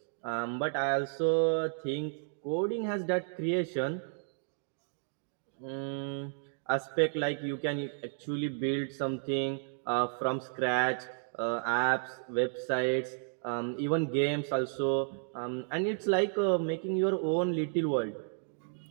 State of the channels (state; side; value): silent; left; digital silence